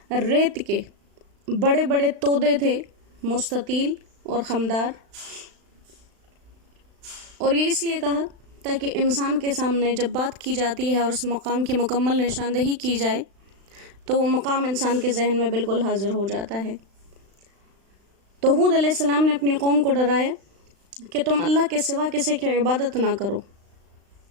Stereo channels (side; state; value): left; late; 35 ms